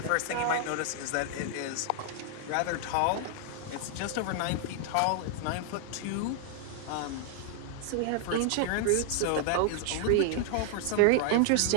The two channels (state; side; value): different; both; correlation 0.00